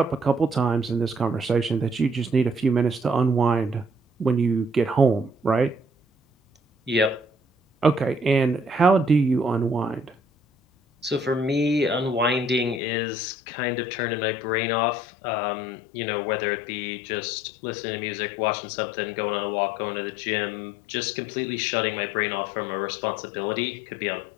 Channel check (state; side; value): drops out; right; at 12.8 s